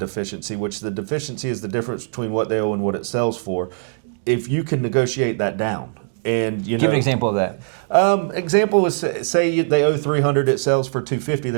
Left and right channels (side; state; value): left; silent; digital silence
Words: which the deficiency is the difference between what they owe and what it sells for, if you can negotiate that down. And you Give know, an example of that. Example is, say they owe $300, it sells for $250.